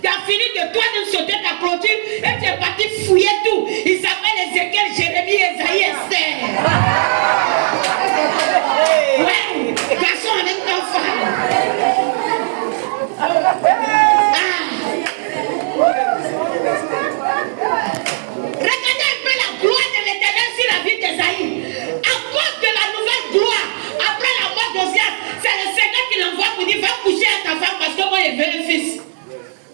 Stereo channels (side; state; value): left; silent; 68 dB below the other